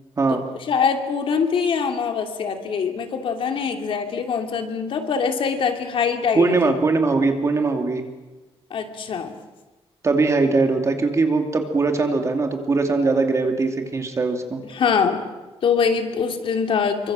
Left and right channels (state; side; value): normal; both; correlation 0.62